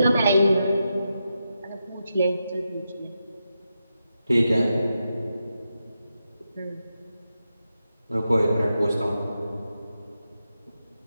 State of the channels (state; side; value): inverted; both; correlation -0.87